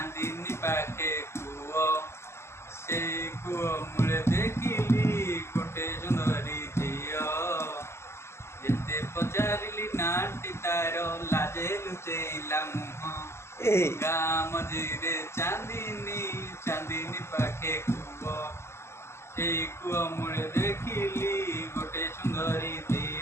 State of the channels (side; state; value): right; late; 0.13 ms